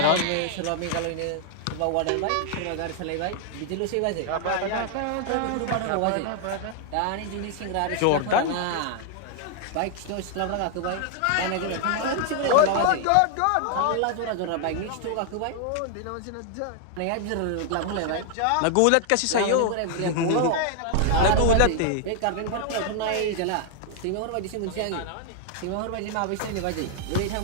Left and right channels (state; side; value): different; both; correlation 0.00